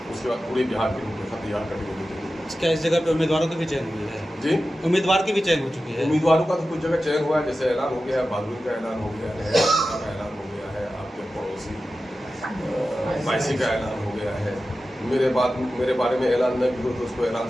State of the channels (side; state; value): both; normal; correlation 0.93